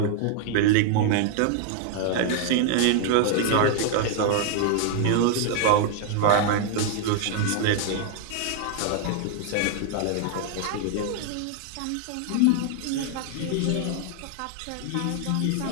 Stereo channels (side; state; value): both; different; correlation 0.00